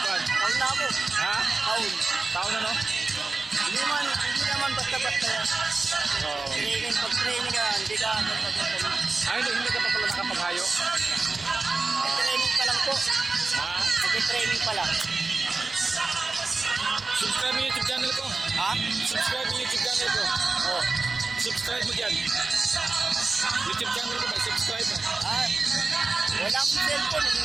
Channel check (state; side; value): quieter; left; 3.8 dB